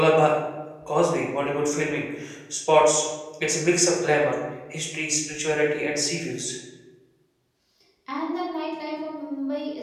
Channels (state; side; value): identical; both; correlation 1.00